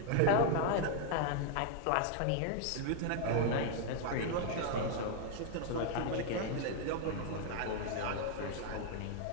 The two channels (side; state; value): both; different; correlation 0.00